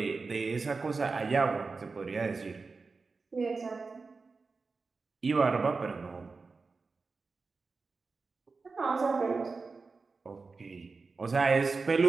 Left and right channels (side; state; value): left; quieter; 4.2 dB